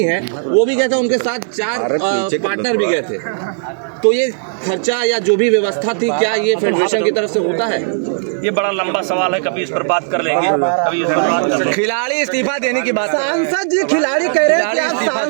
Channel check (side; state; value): left; silent; digital silence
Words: हैं वो भी गए थे, उनके साथ 4 पार्टनर भी गए थे। तो ये खर्चा या जो भी व्यवस्था थी, क्या ये फेडरेशन की तरफ से होता है? ये बड़ा लंबा सवाल है, कभी इस पर बात कर लेंगे, कभी इस पर बात कर लेंगे। खिलाड़ी इस्तीफा देने की बात। सांसद जी, खिलाड़ी कह रहे हैं कि आप